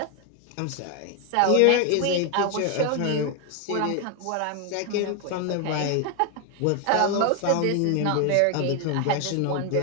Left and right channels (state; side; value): different; both; correlation 0.01